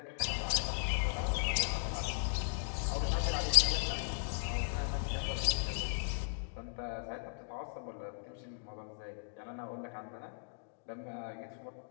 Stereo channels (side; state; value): right; silent; digital silence